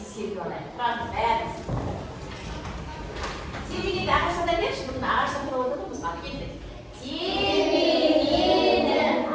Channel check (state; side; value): identical; both; correlation 1.00